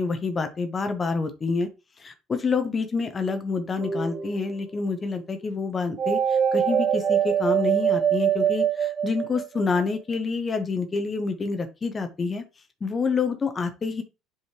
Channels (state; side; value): normal; both; correlation 0.70